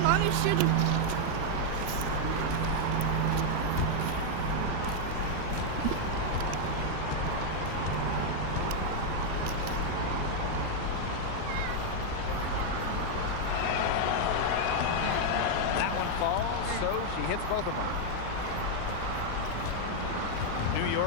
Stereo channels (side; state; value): both; different; correlation 0.00